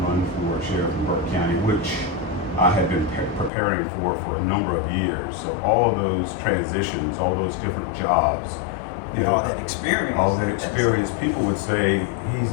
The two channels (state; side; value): drops out; right; at 3.5 s